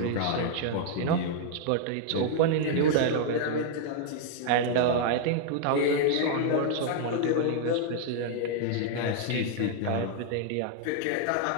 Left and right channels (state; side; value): different; both; correlation -0.01